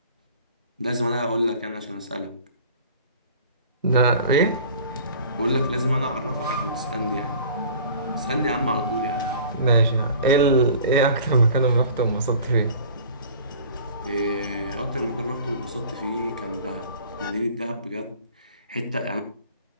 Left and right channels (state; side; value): inverted; both; correlation -0.46